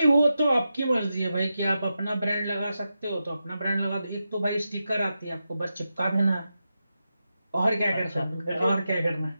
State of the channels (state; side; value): inverted; both; correlation -0.89